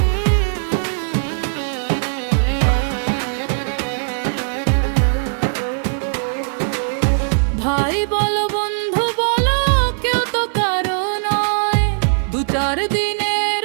ভাই বলো বন্ধু বলো কেউ তো কারো নয়, দু চার দিনের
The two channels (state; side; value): silent; left; digital silence